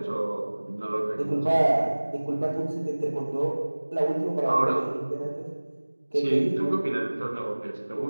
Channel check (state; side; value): inverted; both; correlation -1.00